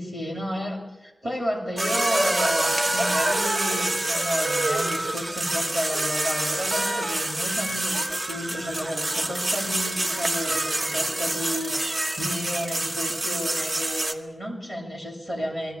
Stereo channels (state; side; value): normal; both; correlation 0.95